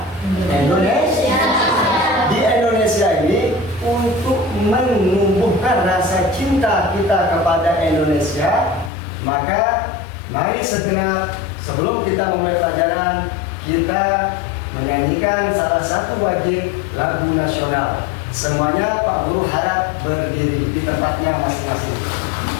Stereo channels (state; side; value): drops out; right; at 8.9 s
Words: Indonesia. Di Indonesia ini, untuk menumbuhkan rasa cinta kita kepada Indonesia, maka mari segera sebelum kita memulai pelajaran, kita menyanyikan salah satu wajib lagu nasional. Semuanya Pak Guru harap berdiri di tempatnya masing-masing.